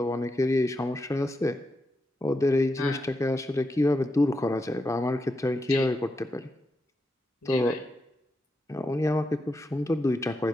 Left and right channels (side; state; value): both; normal; correlation 0.86